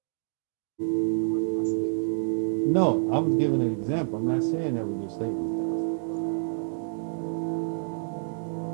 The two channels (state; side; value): silent; left; digital silence